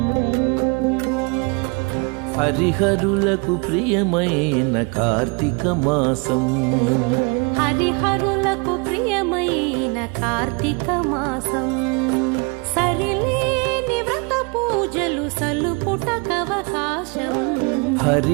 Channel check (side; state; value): left; quieter; 31.3 dB